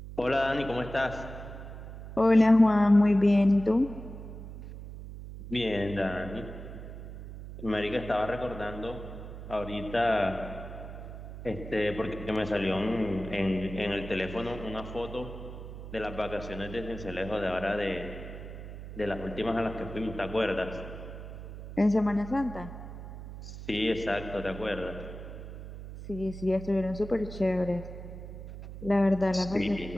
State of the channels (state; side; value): noise; right; hum, 11 dB below the sound